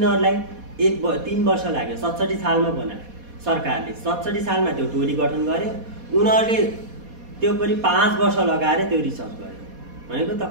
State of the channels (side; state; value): left; late; 4.2 ms